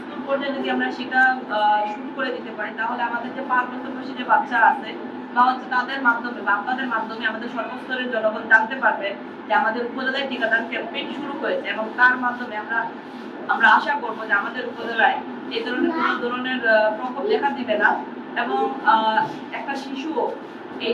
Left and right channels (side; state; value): both; identical; correlation 1.00